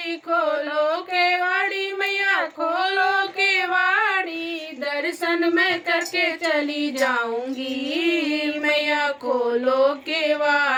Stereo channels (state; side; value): identical; both; correlation 1.00